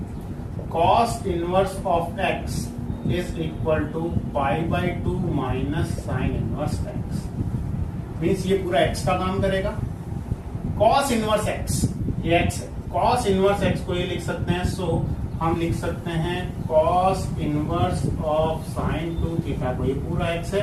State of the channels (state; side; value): identical; both; correlation 1.00